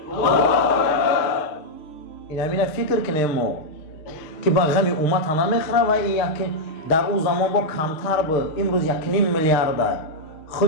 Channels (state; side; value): late; right; 6.6 ms